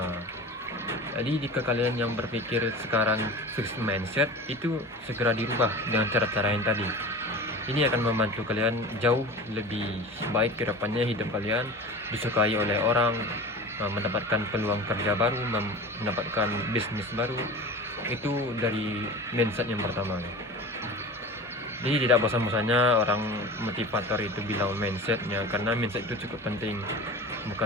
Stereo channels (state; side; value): normal; both; correlation 0.34